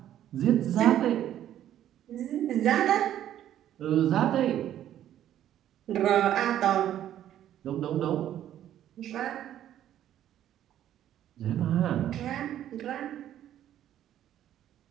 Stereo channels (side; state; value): left; quieter; 11.5 dB